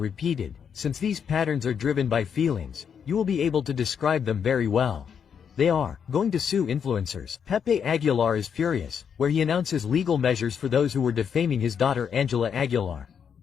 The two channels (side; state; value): right; quieter; 7.4 dB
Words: since these patterns are driven by feelings, you will be able to describe them very well. They are going to sue influencers. Pepe Aguilar is furious, where he announces legal measures for those who were defaming his daughter Angela Aguilar.